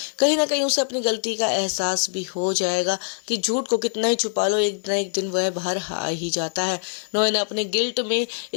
कहीं ना कहीं उसे अपनी गलती का एहसास भी हो जाएगा कि झूठ को कितना ही छुपा लो, एक ना एक दिन वह बाहर आ ही जाता है। नोएना अपने गिल्ट में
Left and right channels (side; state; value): right; silent; digital silence